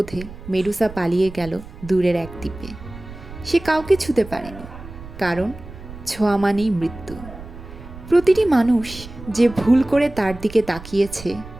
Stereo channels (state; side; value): noise; right; rumble, 15 dB below the sound